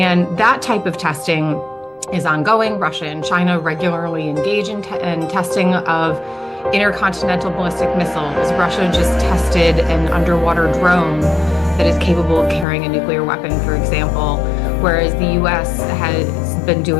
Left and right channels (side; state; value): right; drops out; at 12.7 s